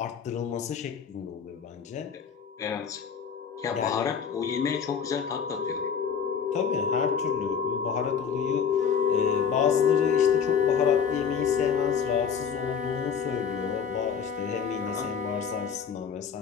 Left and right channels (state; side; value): quieter; right; 7.0 dB